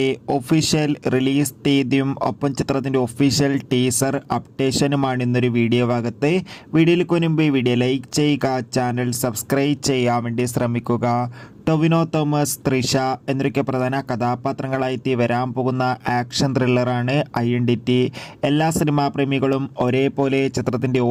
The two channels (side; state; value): both; identical; correlation 1.00